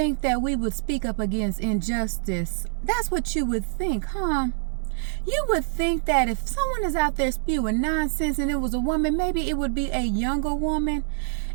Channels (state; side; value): silent; left; 61 dB below the other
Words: that we would speak up against injustice. That's what you would think, huh? You would think that if someone is out there spewing nonsense and it was a woman, maybe it would be a younger woman.